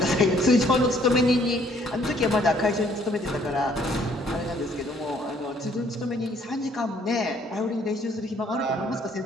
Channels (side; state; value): both; normal; correlation 0.63